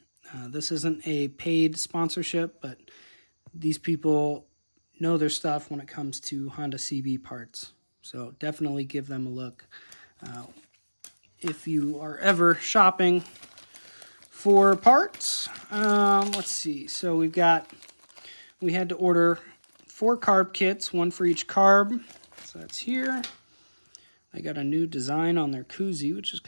this isn't a paid sponsorship, but these people know their stuff when it comes to Honda CB parts, so definitely give them a look. If you are ever shopping for parts. Let's see. So we had to order 4 carb kits, 1 for each carb. So that's here. They got a new design on their koozie, which is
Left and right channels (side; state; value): both; inverted; correlation -1.00